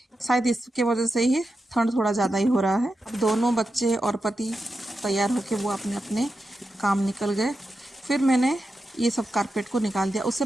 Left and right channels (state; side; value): normal; both; correlation 0.89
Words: शायद इसके वजह से ही ठंड थोड़ा ज़्यादा ही हो रहा है। अब दोनों बच्चे और पति तैयार होके वो अपने अपने काम निकल गए। फिर मैंने ये सब कारपेट को निकाल दिया। उससे